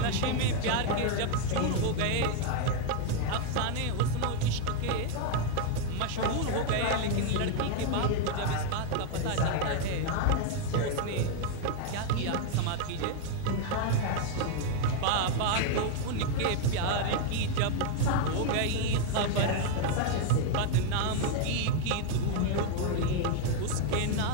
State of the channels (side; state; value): both; different; correlation 0.00